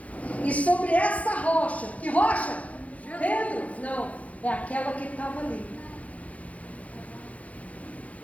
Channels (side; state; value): right; late; 0.067 ms